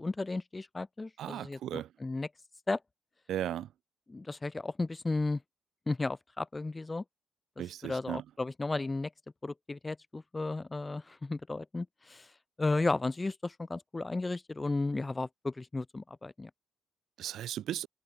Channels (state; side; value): normal; both; correlation 0.92